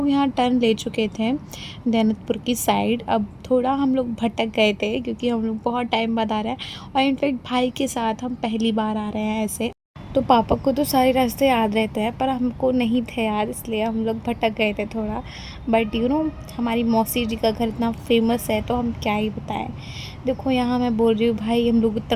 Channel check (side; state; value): both; identical; correlation 1.00